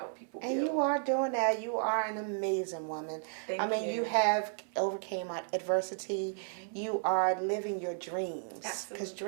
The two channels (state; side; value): silent; left; 55 dB below the other